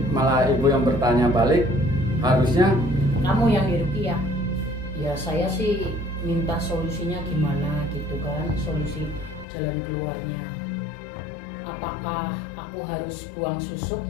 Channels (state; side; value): drops out; right; at 9.5 s